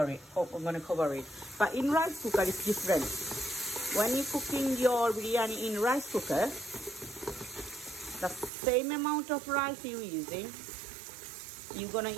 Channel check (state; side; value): drops out; left; at 8.5 s